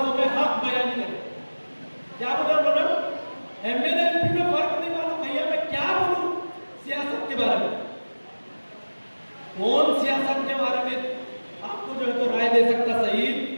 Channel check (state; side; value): inverted; both; correlation -1.00